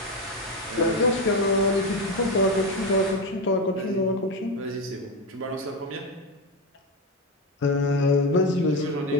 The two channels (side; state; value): both; normal; correlation 0.14